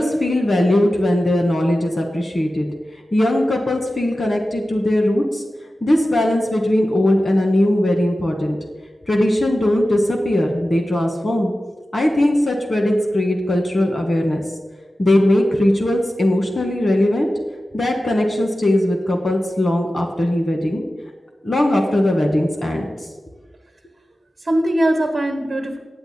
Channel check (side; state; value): both; normal; correlation 0.94